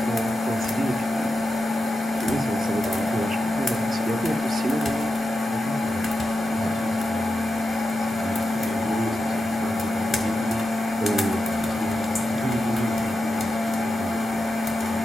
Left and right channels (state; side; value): normal; both; correlation 0.89